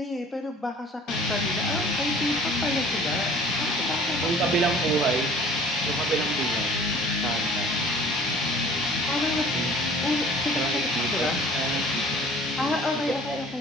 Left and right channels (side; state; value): both; normal; correlation 0.49